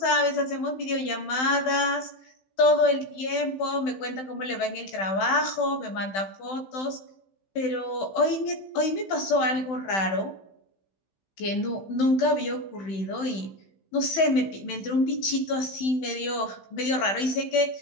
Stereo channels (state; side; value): late; right; 15 ms